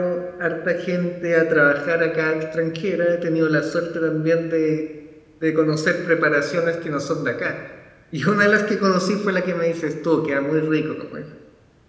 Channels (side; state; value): both; identical; correlation 1.00